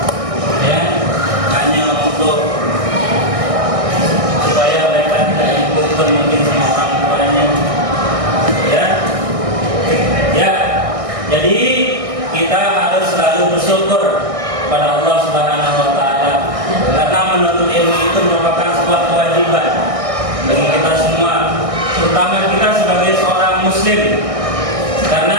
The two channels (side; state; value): left; late; 1.6 ms